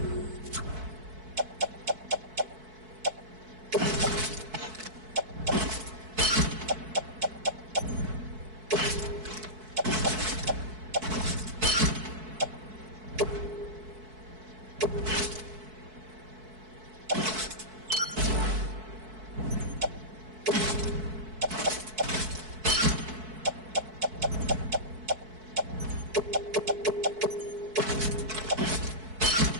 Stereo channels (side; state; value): left; late; 4.6 ms